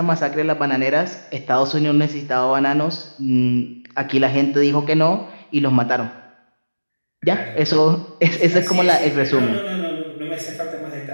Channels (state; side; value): inverted; both; correlation -1.00